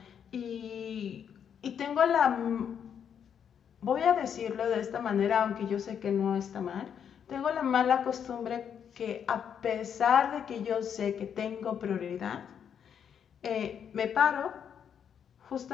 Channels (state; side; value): quieter; right; 8.1 dB